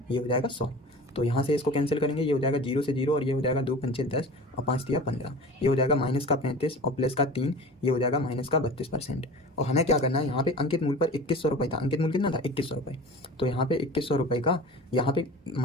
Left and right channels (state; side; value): normal; both; correlation 0.37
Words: ये हो जाएगा 100। तो यहाँ से इसको कैंसिल करेंगे, ये हो जाएगा 0 से 0 और ये हो जाएगा 2 पंचे 10 और 5 तिया 15। ये हो जाएगा माइनस का 35 और प्लस का 3, ये हो जाएगा माइनस का 32%। और हमें क्या करना है, यहाँ पे अंकित मूल्य पर 2100 रुपये था। अंकित मूल्य कितना था 2100 रुपये। तो यहाँ पे 2100 रुपये का यहाँ पे